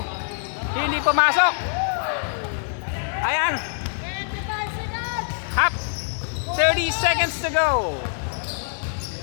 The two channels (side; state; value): right; silent; digital silence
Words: Hindi pumasok. Ayan. 25 seconds. Hap. 30 seconds to go.